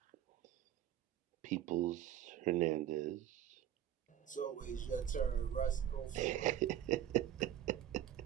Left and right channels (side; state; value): left; quieter; 11.1 dB